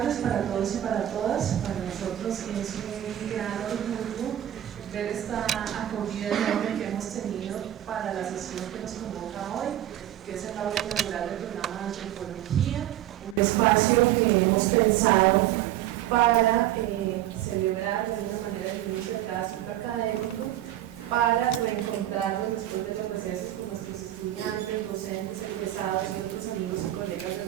para todos y para todas. Para nosotros es un gran orgullo ver esta acogida enorme que hemos tenido para la sesión que nos convoca hoy, que es el aula inaugural del programa de antropología, un espacio que hemos pensado para celebrar de alguna manera el inicio de cada ciclo académico, para reencontrarnos después de los recesos con nuestros estudiantes, docentes, egresados y otros amigos y colegas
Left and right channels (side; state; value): left; quieter; 12.8 dB